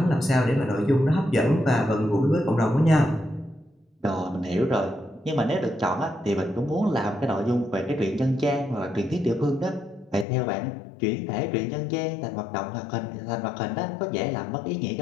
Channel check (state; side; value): drops out; right; at 10.2 s